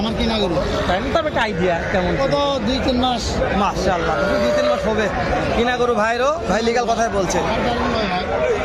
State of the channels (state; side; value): identical; both; correlation 1.00